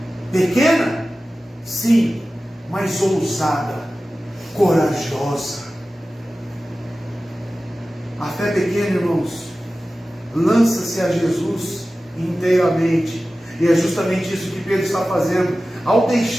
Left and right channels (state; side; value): normal; both; correlation 0.95